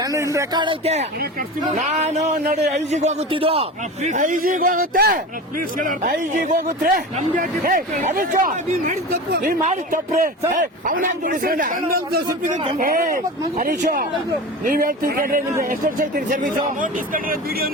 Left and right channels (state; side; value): normal; both; correlation 0.30